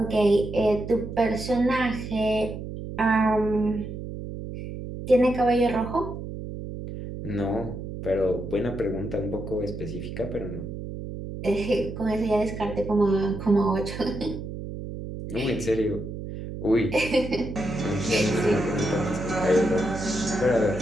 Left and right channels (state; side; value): noise; right; hum, 8 dB below the sound